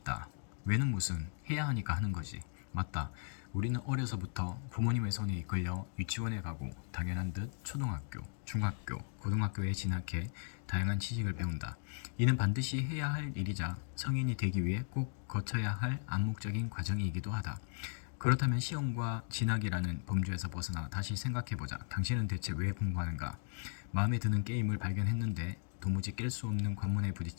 왜는 무슨, 해야 하니까 하는 거지. 맞다. 우리는 어려서부터 부모님의 손에 이끌려 유치원에 가고 당연한 듯 초등학교, 중학교, 고등학교에 진학해 다양한 지식을 배운다. 이는 반드시 해야 할 일이자 성인이 되기 위해 꼭 거쳐야 할 암묵적인 과정이기도 하다. 그렇다면 시험과 진학이라는 범주에서 벗어나 다시 생각해보자. 당신은 대체 왜 공부하는가? 마음에 드는 게임을 발견했는데 도무지 깰 수 없는 관문에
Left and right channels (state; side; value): silent; right; digital silence